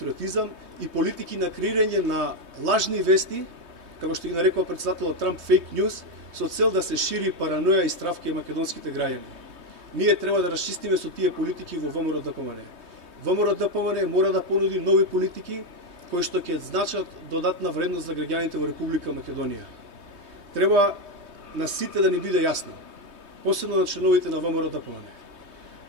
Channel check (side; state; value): left; late; 3.2 ms